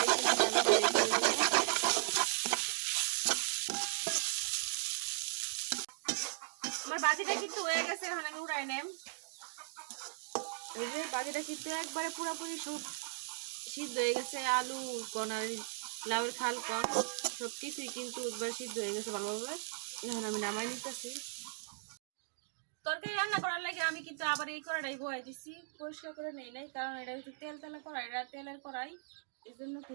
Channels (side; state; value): left; silent; digital silence